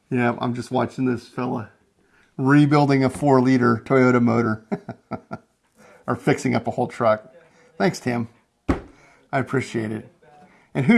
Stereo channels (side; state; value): both; identical; correlation 1.00